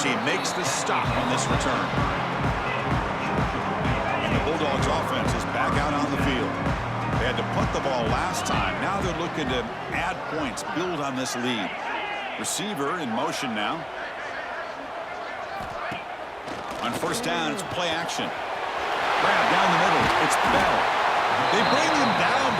team makes the stop on this return. And the Bulldogs offense is back out on the field. They had to punt the ball last time. Now they're looking to add points, build on this lead. Receiver in motion now. On 1st down, it's play action. Grab down the middle. It's Bell. They bring him down,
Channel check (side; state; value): both; identical; correlation 1.00